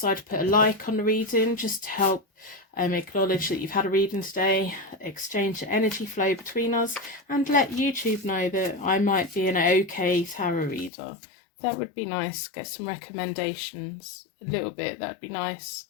to put a like on the reading just to help acknowledge that you've had a reading today, exchange the energy flow between us, and let YouTube know that I might be an okay tarot reader. That would be nice. Get some recommendations. A little bit. That'd be nice.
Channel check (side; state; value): right; drops out; at 10.9 s